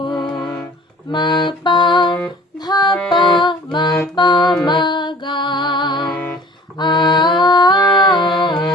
মাপা ধাপা মাপা মাগা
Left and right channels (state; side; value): normal; both; correlation 0.48